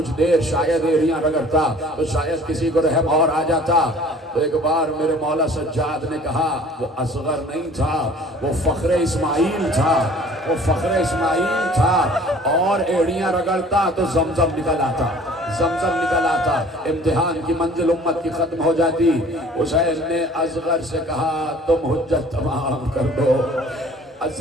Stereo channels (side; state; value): both; normal; correlation 0.50